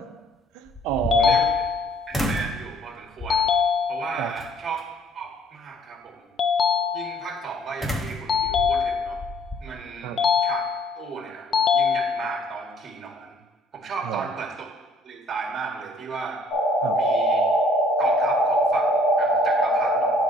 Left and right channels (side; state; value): both; normal; correlation 0.59